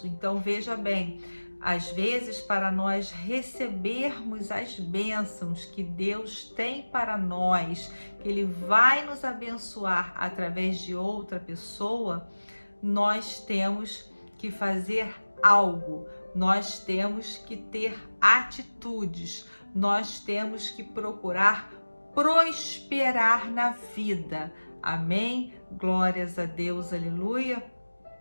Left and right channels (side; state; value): both; inverted; correlation -1.00